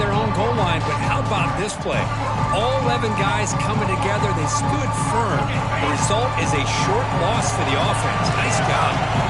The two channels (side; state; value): both; identical; correlation 1.00